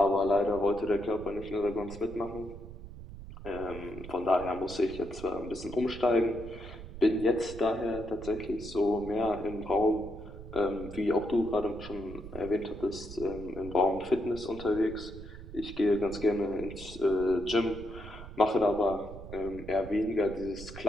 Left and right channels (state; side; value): noise; right; rumble, 13 dB below the sound